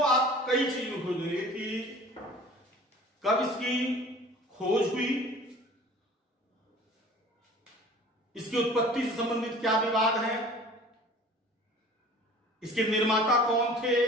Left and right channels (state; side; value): normal; both; correlation 0.46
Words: आप कई चीजों खोज लेंगे कि कब इसकी खोज हुई, इसकी उत्पत्ति से संबंधित क्या विवाद है, इसके निर्माता कौन थे,